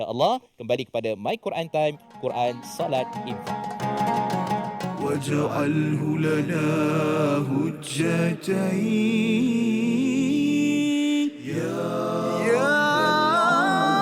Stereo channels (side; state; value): both; identical; correlation 1.00